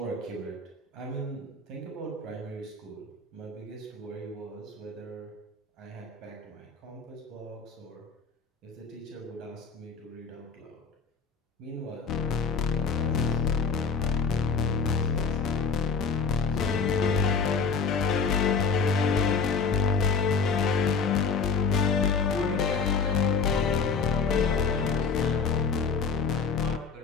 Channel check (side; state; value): right; quieter; 5.2 dB